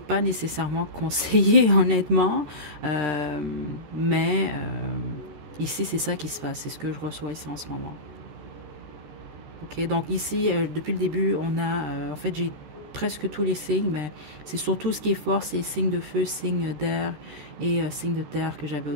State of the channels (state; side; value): late; left; 13 ms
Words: nécessairement conseillé, honnêtement. Mais ici, c'est ça qui se passe. C'est ce que je reçois ici en ce moment. Ok, donc ici, depuis le début, on a, en fait, j'ai presque tous les signes, mais c'est surtout ce qui est fort, c'est signes de feu, signes d'air et signes de terre que j'avais au